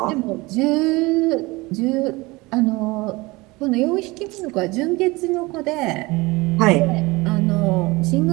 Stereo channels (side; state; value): left; quieter; 22.8 dB